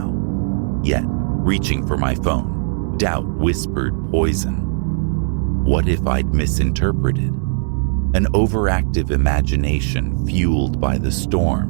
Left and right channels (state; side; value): silent; left; digital silence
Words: Yet, reaching for my phone, doubt whispered poison. What if I'd misinterpreted? An overactive imagination fueled by the